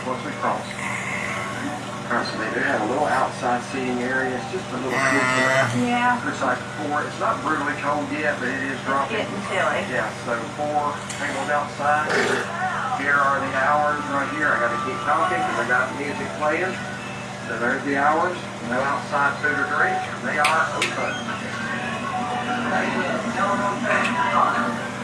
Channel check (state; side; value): identical; both; correlation 1.00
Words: once we cross. All right, so they do have a little outside seating area. It's just a little kids. Yeah. Looks like 4. It's not brutally cold yet, but it is dropping. Getting chilly. Yeah, so 4 tables outside. Here are the hours right here. I got to keep talking because I got music playing. So there's the hours. No outside food or drink. They are open.